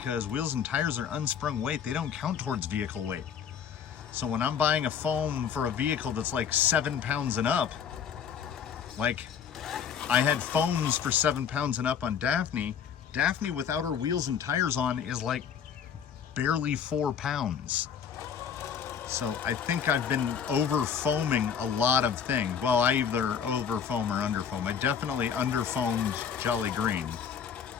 wheels and tires are unsprung weight. They don't count towards vehicle weight. So when I'm buying a foam for a vehicle that's like 7 pounds and up, like I had foams for 7 pounds and up on Daphne. Daphne without her wheels and tires on is like barely 4 pounds. So I think I've been over foaming a lot of things. Well, I either over foam or under foam. I definitely under foamed Jolly Green.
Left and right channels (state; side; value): quieter; right; 7.7 dB